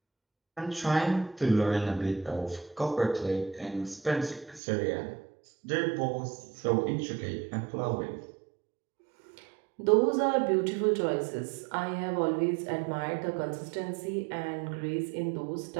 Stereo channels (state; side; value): drops out; left; at 4.6 s